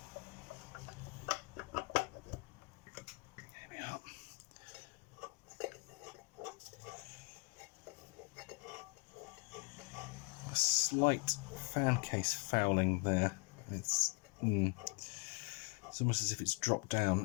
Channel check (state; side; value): quieter; right; 29.3 dB